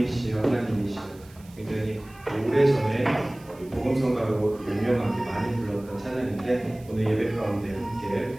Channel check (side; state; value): right; noise; hiss, 26 dB below the sound